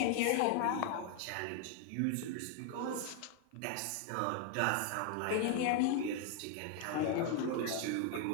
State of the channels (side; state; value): both; different; correlation 0.01